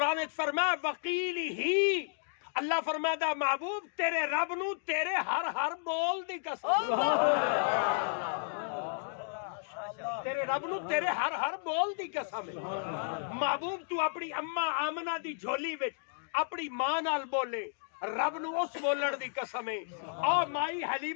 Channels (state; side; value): silent; right; digital silence